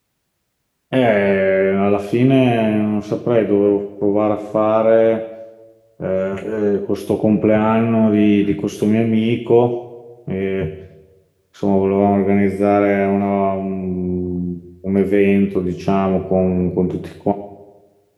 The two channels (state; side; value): identical; both; correlation 1.00